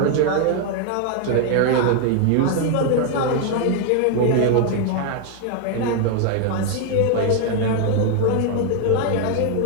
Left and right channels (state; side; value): different; both; correlation 0.00